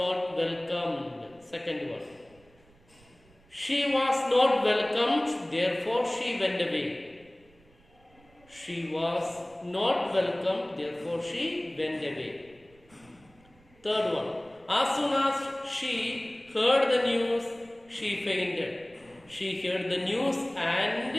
welcomed. Second one. She was not welcomed, therefore she went away. She was not welcomed, therefore she went away. Third one. As soon as she heard the news, she fainted. She heard the news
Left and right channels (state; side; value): noise; right; rumble, 29 dB below the sound